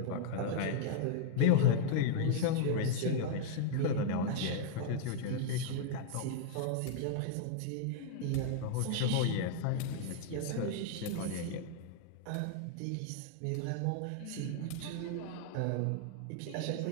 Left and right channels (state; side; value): different; both; correlation -0.01